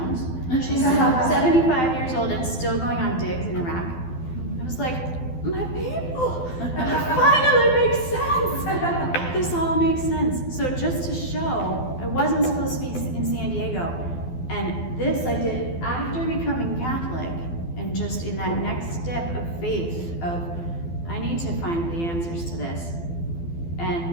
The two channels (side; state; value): right; late; 12 ms